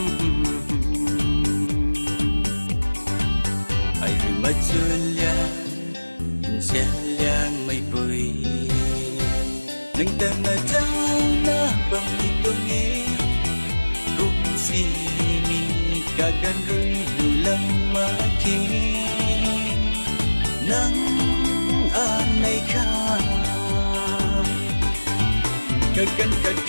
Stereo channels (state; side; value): inverted; both; correlation -1.00